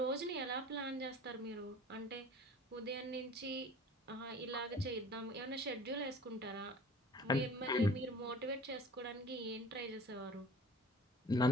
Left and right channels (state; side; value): normal; both; correlation 0.45